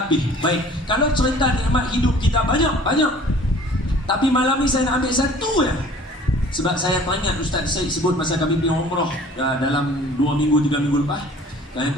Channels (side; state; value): both; normal; correlation 0.50